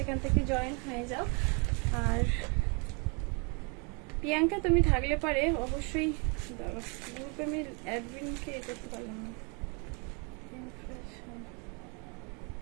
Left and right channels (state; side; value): quieter; left; 34.5 dB